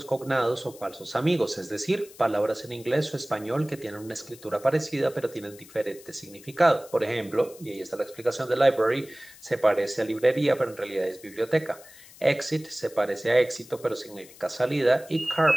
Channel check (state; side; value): noise; left; hiss, 21 dB below the sound